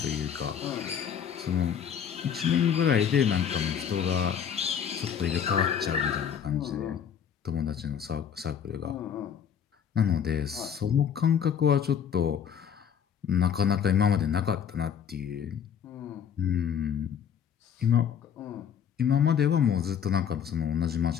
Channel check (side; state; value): right; quieter; 8.2 dB